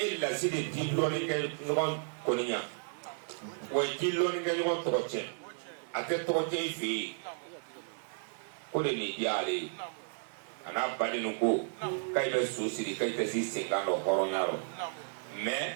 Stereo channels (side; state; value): left; silent; digital silence